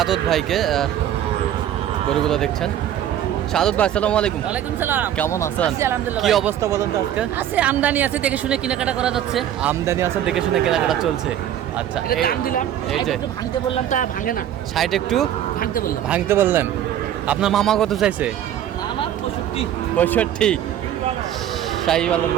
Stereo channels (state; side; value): quieter; left; 11.0 dB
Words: ভাইকে, গরুগুলো দেখছেন। শাহাদত ভাই আসসালামু আলাইকুম। ওয়ালাইকুম সালাম। কেমন আছেন? কি অবস্থা বলেন তো আজকে? আছে আমদানি আছে, দেখে শুনে কেনাকাটা করা যাচ্ছে। আমদানি আছে, দেখে শুনে কেনাকাটা চলছে। আচ্ছা, এটা দাম দিলাম, এই যে একটু ভাঙতে বললাম, তা ভাঙে না। সাইড একটু ভাঙতে বললেন। আপনার মামা কত চাইছে? মামা 65। শাহিওয়ালের